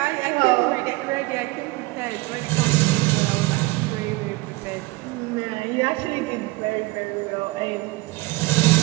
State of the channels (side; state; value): left; quieter; 22.1 dB